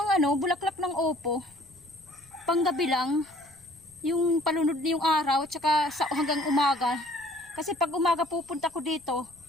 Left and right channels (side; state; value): left; noise; rumble, 28 dB below the sound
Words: yung bulaklak ng opo. Panggabi lang. Yung palunod na yung araw at saka hanggang umaga. Kasi pag umaga pupunta ko dito,